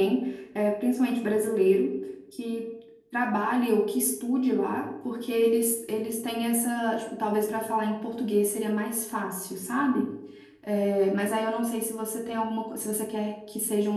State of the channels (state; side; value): identical; both; correlation 1.00